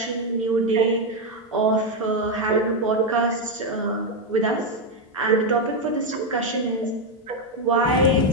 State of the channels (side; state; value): both; normal; correlation 0.05